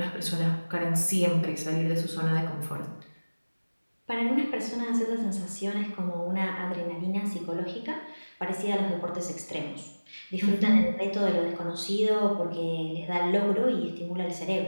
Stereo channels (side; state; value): both; inverted; correlation -1.00